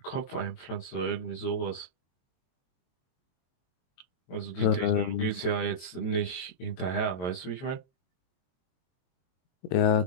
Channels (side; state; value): right; late; 22 ms